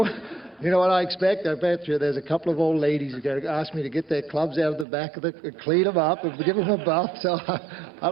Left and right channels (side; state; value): left; drops out; at 4.9 s